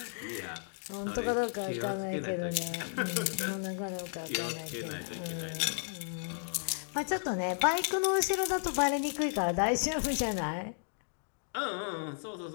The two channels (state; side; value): silent; right; digital silence